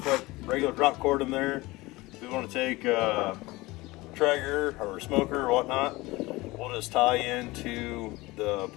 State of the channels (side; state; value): right; quieter; 21.0 dB